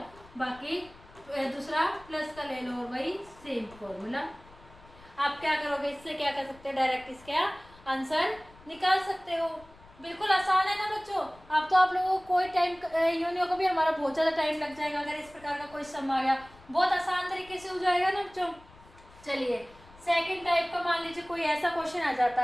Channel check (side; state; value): left; noise; rumble, 24 dB below the sound